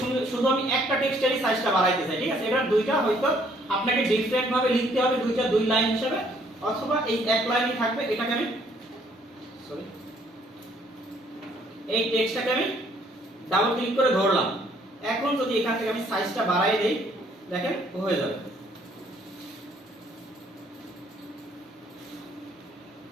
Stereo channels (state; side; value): normal; both; correlation 0.64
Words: শুধু আমি একটা টেক্সটেরই সাইজটা বাড়াইতে চাই, ঠিক আছে, এটা দুইটা হয়তো আপনাকে ডিফারেন্ট ভাবে লিখতে হবে, দুইটা দুই লাইন হিসেবে, অথবা এই এক লাইনই থাকবে। এটাকে আমি সরি এই টেক্সটটাকে আমি ডাবল ক্লিক করে ধরলাম। এখন যদি এখান থেকে আমি সাইজটা বাড়াই দেই, দেখেন হয়ে যাবে।